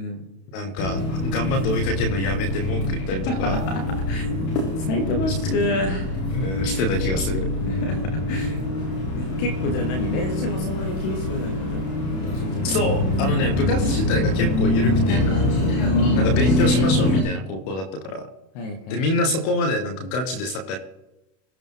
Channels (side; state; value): right; late; 32 ms